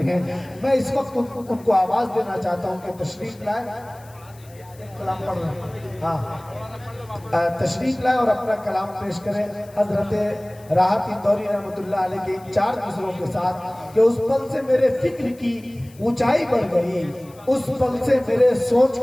हैं। मैं इस वक्त उनको आवाज देना चाहता हूँ कि तशरीफ लाए, कलाम पढ़ रहे हैं, हाँ तशरीफ लाए और अपना कलाम पेश करें। हजरत राहत इंदौरी रहमतुल्लाह अलैह के इन 4 मिसरों के साथ कि उस पल से मेरे फिक्र की ऊंचाई बढ़ गई, उस पल से मेरे सोच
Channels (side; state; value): left; noise; hiss, 26 dB below the sound